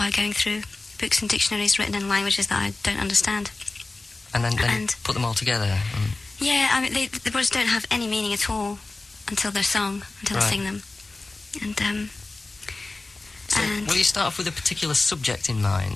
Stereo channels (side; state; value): right; quieter; 3.3 dB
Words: going through books and dictionaries written in languages that I don't understand. And then put them all together? Yeah, I mean, the words don't have any meaning at all until they're sung, until I sing them. And So, will you start off with a particular subject in